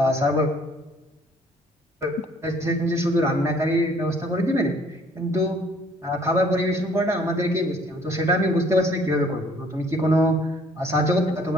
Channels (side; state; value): both; normal; correlation 0.59